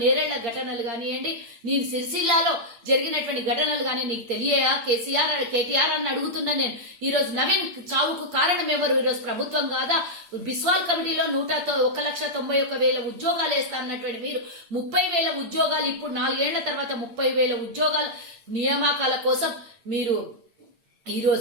నేరేళ్ల ఘటనలు కానివ్వండి, నీ సిరిసిల్లాలో జరిగినటువంటి ఘటనలు కానీ నీకు తెలియయా కేటీఆర్ అని అడుగుతున్నా నేను. ఈ రోజు నవీన్ చావుకు కారణం ఎవరు? ఈరోజు ప్రభుత్వం కాదా? బిస్వాల్ కమిటీలో 1,91,000 ఉద్యోగాలు వేస్తా అన్నటువంటి మీరు 30,000 ఉద్యోగాలు ఇప్పుడు 4 ఏళ్ల తర్వాత 30,000 ఉద్యోగాలు నియామకాల కోసం మీరు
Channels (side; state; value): left; late; 8.7 ms